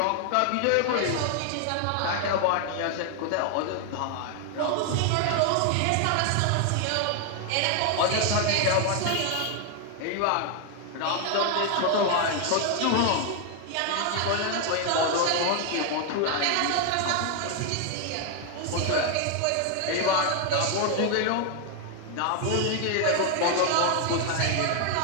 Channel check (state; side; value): different; both; correlation 0.01